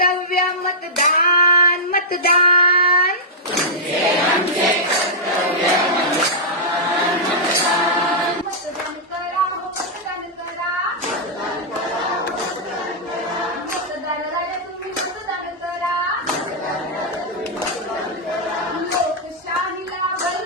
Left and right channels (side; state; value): both; normal; correlation -0.10